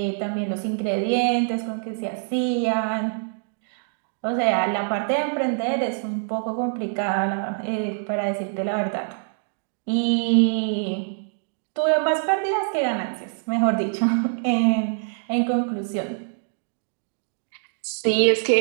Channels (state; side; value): silent; left; digital silence